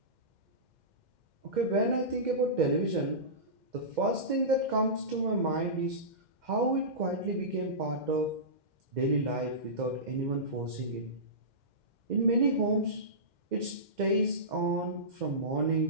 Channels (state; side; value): late; left; 2.1 ms